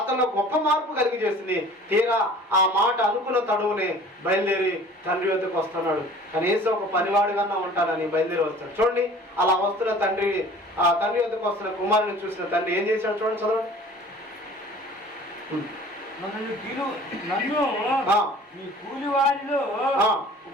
గొప్ప మార్పు కలిగి చేసింది. తీరా ఆ మాట అనుకున్న తడువునే బయలుదేరి తండ్రి వద్దకు వస్తున్నాడు. కనీసం ఒక పనివాడిగా ఉంటానని బయలుదేరి వస్తాడు. చూడండి, అలా వస్తున్న తండ్రి, ఆ తండ్రి వద్దకు వస్తున్న కుమారుని చూసిన తండ్రి ఏం చేశాడు చూడండి, చదవండి. నన్ను నీ కూలి వారిలో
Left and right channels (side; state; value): both; normal; correlation 0.47